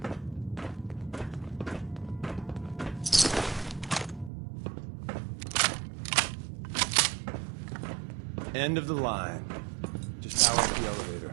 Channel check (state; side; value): drops out; left; at 4.3 s